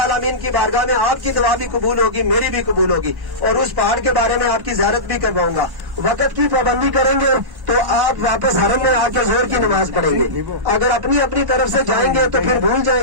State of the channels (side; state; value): left; late; 1.1 ms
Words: کی بارگاہ میں آپ کی دعا بھی قبول ہوگی، میری بھی قبول ہوگی، اور اس پہاڑ کے بارے میں آپ کی زیارت بھی کرواؤں گا۔ وقت کی پابندی کریں گے تو آپ واپس حرم میں آ کے زور کی نماز پڑھیں گے، اگر اپنی طرف سے جائیں گے تو پھر بھول جائیں